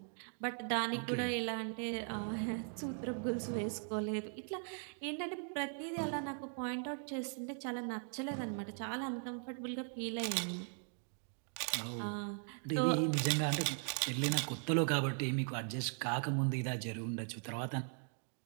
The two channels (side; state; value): left; silent; 52 dB below the other